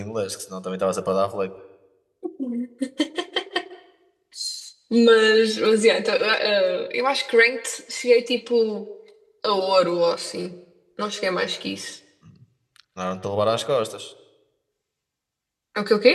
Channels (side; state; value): both; identical; correlation 1.00